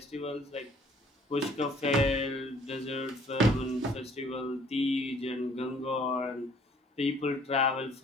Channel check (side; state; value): both; normal; correlation 0.58